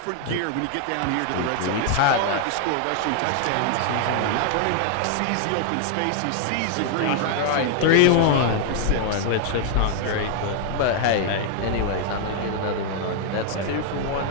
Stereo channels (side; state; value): both; different; correlation 0.00